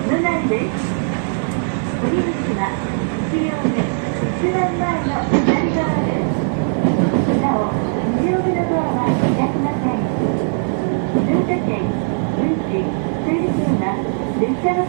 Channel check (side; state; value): left; silent; digital silence